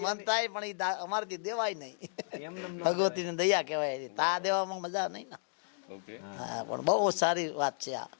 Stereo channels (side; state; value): right; silent; digital silence